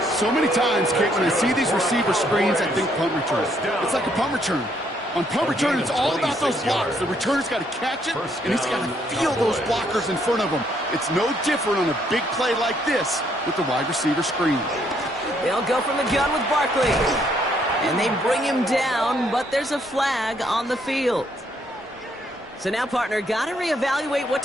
So many times, Kate, when I see these receiver screens, I think punt return. It's like a punt return. On punt return, it's all about those blocks. The returner's got to catch it, and he's got to feel those blockers in front of him. It's no different on a big play like this with the wide receiver screen. They'll go from the gun with Barkley. And they bring him down, but there's a flag on the field. So now, partner, got to reevaluate what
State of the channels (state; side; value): normal; both; correlation 0.70